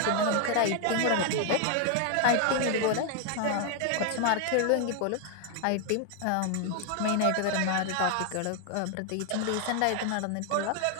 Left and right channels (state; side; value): different; both; correlation 0.00